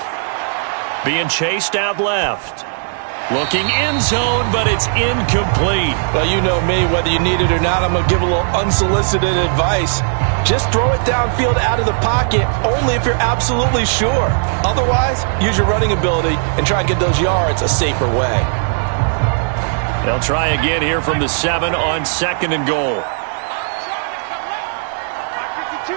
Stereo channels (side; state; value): left; silent; digital silence